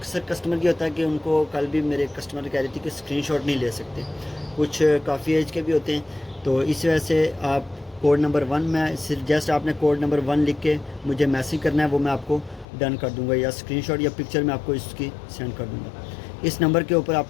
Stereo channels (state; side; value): drops out; right; at 12.7 s